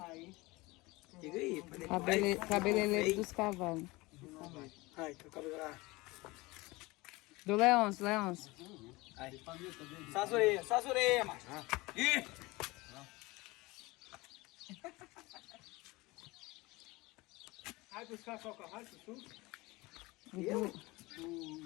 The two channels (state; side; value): quieter; right; 22.2 dB